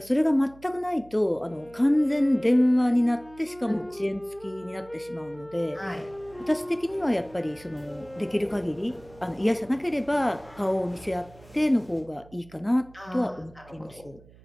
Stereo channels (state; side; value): noise; right; hum, 24 dB below the sound